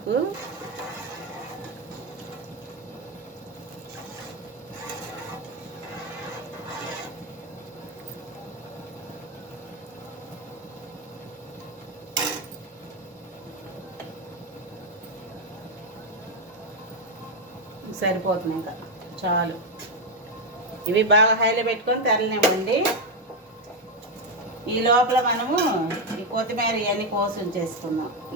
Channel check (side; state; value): both; normal; correlation 0.06